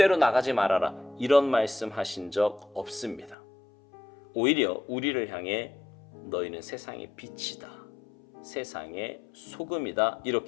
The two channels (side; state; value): right; drops out; at 3.4 s